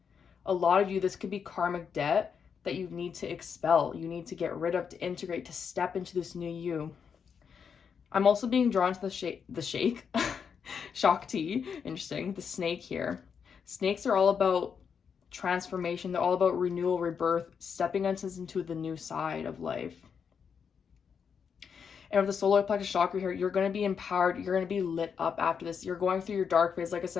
A lot of you, this could be karmic debt that you need to expel. You need to get rid of, to integrate, to step into this new you. I'm also being drawn to the shake, Shakti, interesting, the snake here. Snakes are all about transformation. They're all about renewal, rebirth, stepping into the new side of life. And with the solar plexus chakra here, you're going to be empowered. You're going to be lit up after this. You're going through your dark phase, like I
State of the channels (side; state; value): right; quieter; 6.7 dB